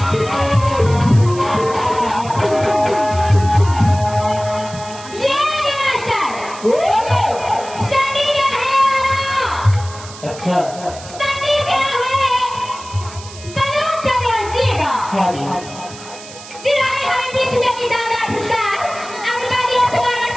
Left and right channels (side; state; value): right; noise; hiss, 16 dB below the sound